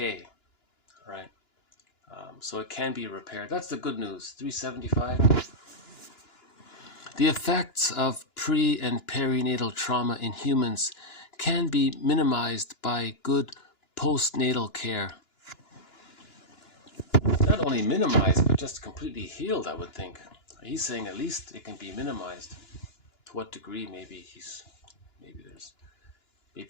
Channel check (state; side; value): late; right; 2.9 ms